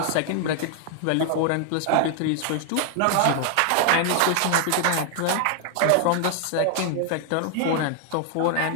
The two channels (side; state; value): both; different; correlation 0.00